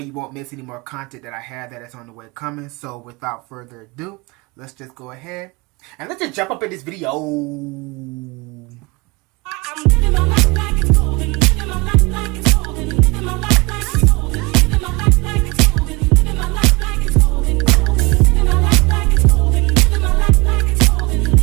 won't miss any more content that I have that is on the way coming. So without further ado, let's just go ahead and let's just jump up in this video. I'm living my life like it's golden, living my life like it's golden, living my life like it's golden, living my life like it's golden, living my life like it's golden, living my life like it's golden, living my life like it's golden,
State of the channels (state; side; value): quieter; left; 25.7 dB